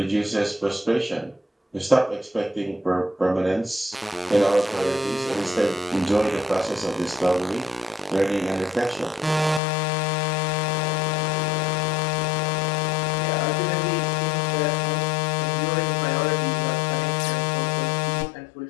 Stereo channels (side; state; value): right; drops out; at 9.6 s